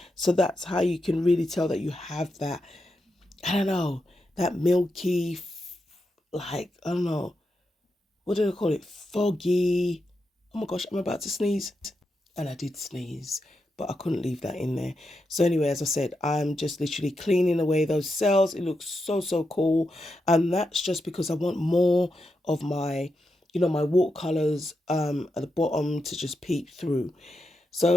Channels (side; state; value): both; normal; correlation 0.86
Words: So that's how you can really tell that you have that, I don't know, that milky, like, I don't know, what do I call it? Foggy. Oh my gosh, I'm about to sneeze. And I did sneeze, but I couldn't leave that in there. So anyway, as I said, I'm just literally cleaning away those cells. It looks so, so cool. And that's just because I want more of my, you know, my watercolors at the bottom to just peep through.